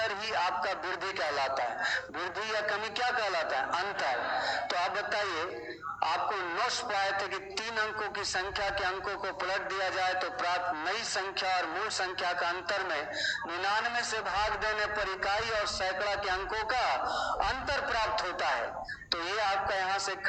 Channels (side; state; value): both; identical; correlation 1.00